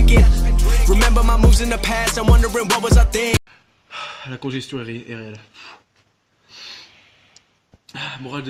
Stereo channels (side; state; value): both; identical; correlation 1.00